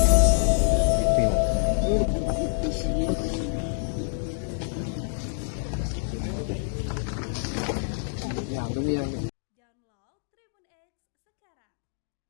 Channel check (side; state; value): right; silent; digital silence